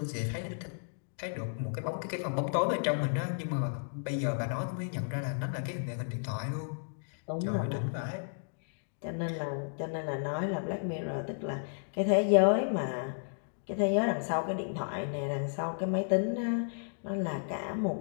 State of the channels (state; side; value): silent; right; digital silence